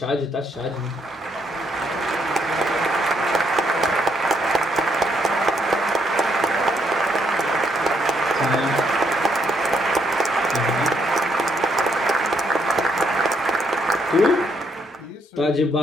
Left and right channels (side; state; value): both; normal; correlation 0.75